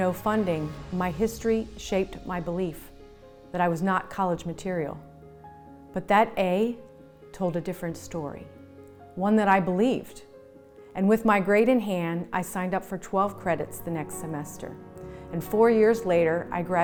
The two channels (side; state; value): both; identical; correlation 1.00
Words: funding, my history shaped my belief that I was not college material. But that A told a different story, one that I believed. And with my grade in hand, I signed up for 12 credits the next semester. And 4 years later, I